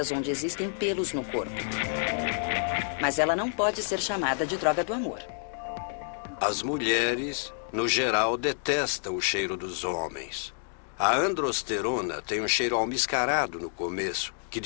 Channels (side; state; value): right; silent; digital silence